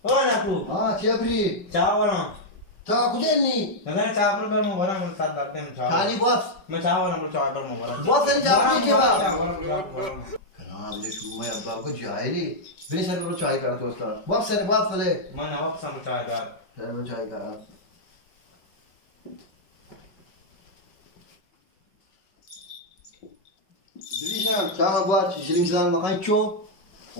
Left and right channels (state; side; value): late; right; 5.2 ms